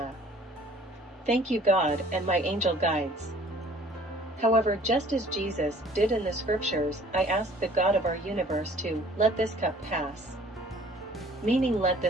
Thank you, God and my angel guides. However, just as Jesus did in the scriptures, I asked the God of our universe to let this cup pass. Meaning let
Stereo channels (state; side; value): normal; both; correlation 0.54